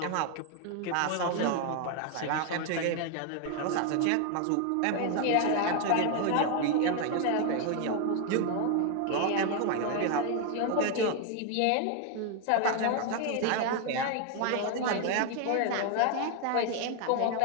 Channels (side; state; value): both; different; correlation 0.01